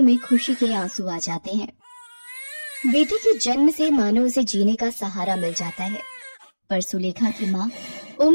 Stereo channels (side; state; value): both; inverted; correlation -1.00